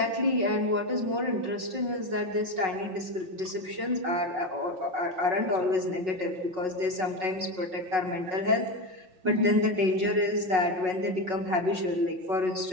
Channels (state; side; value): late; left; 5.4 ms